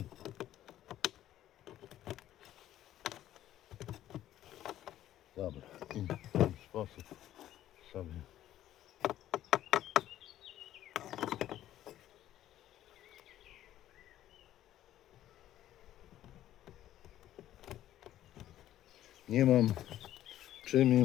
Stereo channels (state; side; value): quieter; right; 12.7 dB